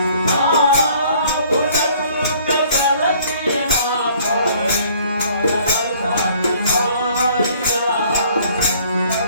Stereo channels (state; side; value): inverted; both; correlation -0.57